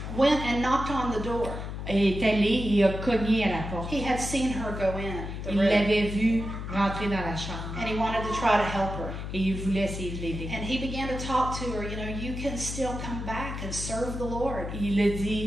went and knocked on the door. est allé et a cogné à la porte. He had seen her go in the Il room l'avait vue rentrer dans la chambre. and he wanted to try to help her. Et il voulait essayer de l'aider. And he began to talk to her, you can still come back and serve the Lord. Il a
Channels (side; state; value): left; noise; hum, 6 dB below the sound